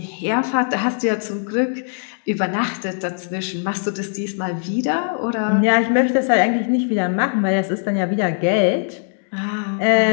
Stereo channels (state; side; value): silent; right; 65 dB below the other